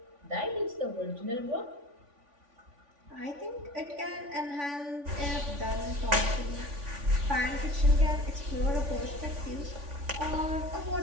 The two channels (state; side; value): late; left; 3.5 ms